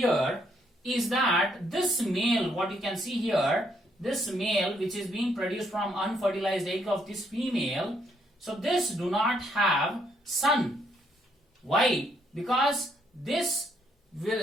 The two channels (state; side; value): normal; both; correlation 0.72